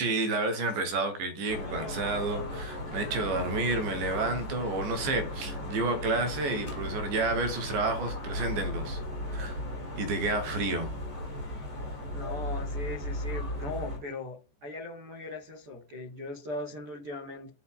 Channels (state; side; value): late; left; 14 ms